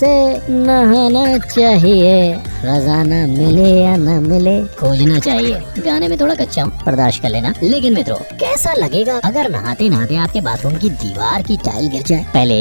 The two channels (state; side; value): inverted; both; correlation -1.00